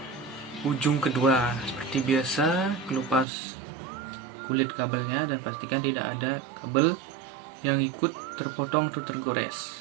ujung kedua. Seperti biasa, kelupas kulit kabelnya dan pastikan tidak ada kabel yang ikut terpotong atau tergores.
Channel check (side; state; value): left; drops out; at 3.2 s